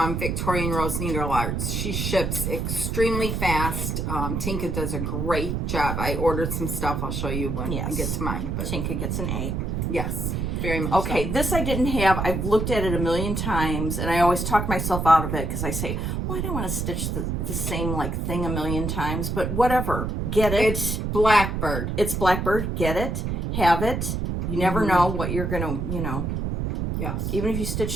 Victorian Rose Needle Arts, she ships extremely fast. Tinka does a great job. I ordered some stuff. I'll show you when I get to mine. But Tinka gets an A. Yes, very much. Okay, so. This I didn't have. I've looked at it a million times, and I always talk myself out of it because I say, well, I don't want to stitch the same thing a million times, but whatever. Get it. It's Blackbird. It's Blackbird. Get it. Have it. You never know what you're going to, Yes. Even if you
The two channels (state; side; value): noise; right; rumble, 1 dB below the sound